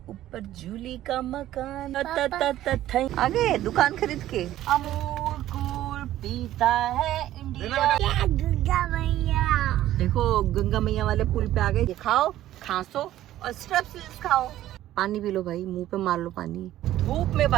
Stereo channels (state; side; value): quieter; left; 13.6 dB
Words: ऊपर जूली का मकान। आगे दुकान खरीद के अमूल कूल पीता है इंडिया। गंगा मैया देखो, गंगा मैया वाले पुल पे आ गए। खाओ, खांसो और स्ट्रेप्सिल्स खाओ। पानी पी लो भाई, मुंह पे मार लो पानी। धूप में